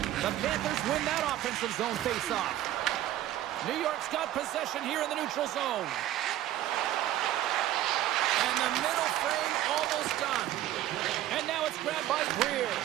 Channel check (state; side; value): quieter; left; 13.4 dB